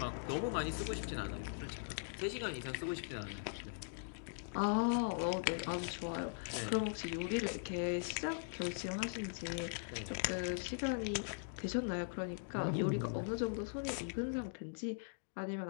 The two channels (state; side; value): silent; right; digital silence